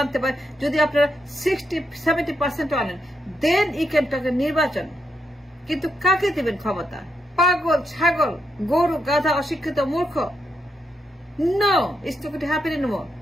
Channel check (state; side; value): normal; both; correlation 0.81